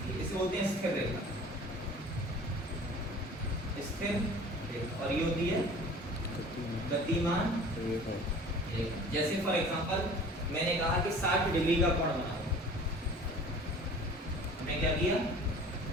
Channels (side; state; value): both; normal; correlation 0.45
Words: है। इसे बोलते हैं स्थिर रेखा, स्थिर रेखा, और ये होती है गतिमान रेखा। जैसे फॉर एग्जांपल मैंने कहा कि 60 डिग्री का कोण बनाओ, हमने क्या किया?